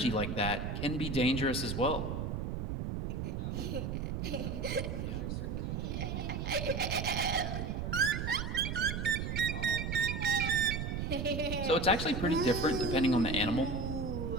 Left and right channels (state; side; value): noise; right; rumble, 3 dB below the sound